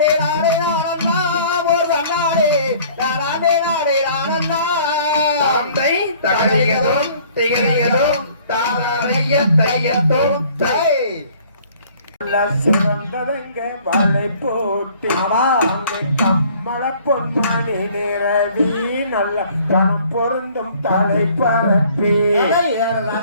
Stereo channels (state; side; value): inverted; both; correlation -0.55